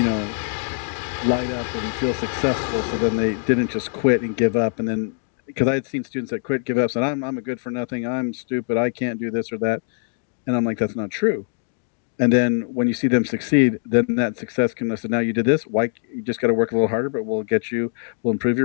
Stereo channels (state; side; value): silent; right; digital silence